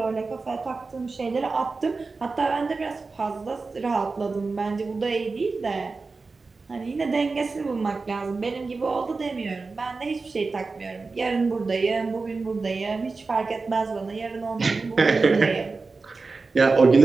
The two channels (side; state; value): left; quieter; 4.1 dB